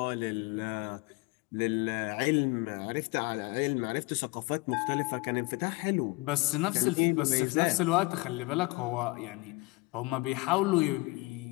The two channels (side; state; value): right; quieter; 25.1 dB